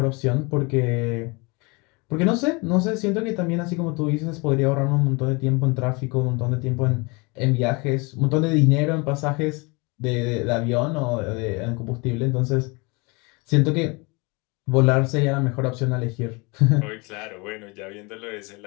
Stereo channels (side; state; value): right; quieter; 28.2 dB